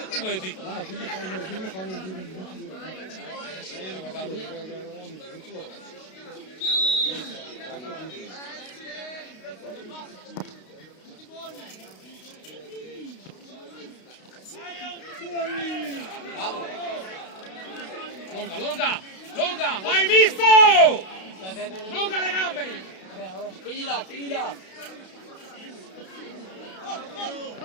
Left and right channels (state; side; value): late; right; 32 ms